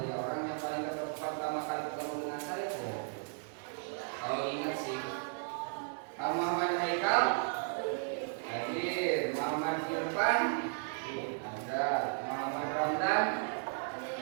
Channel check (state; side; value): silent; left; 54 dB below the other